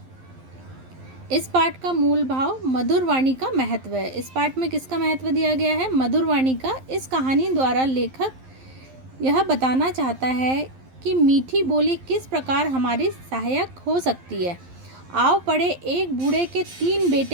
इस पाठ का मूल भाव मधुर वाणी का महत्व है। इस पाठ में किसका महत्व दिया गया है? मधुर वाणी का। इस कहानी द्वारा लेखक यह बताना चाहता है कि मीठी बोली किस प्रकार हमारी सहायक हो सकती है। आओ पढ़े, एक बूढ़े के 3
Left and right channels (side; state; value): left; late; 11 ms